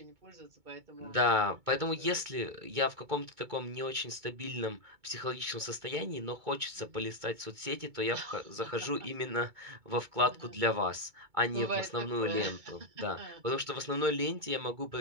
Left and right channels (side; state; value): left; late; 2.2 ms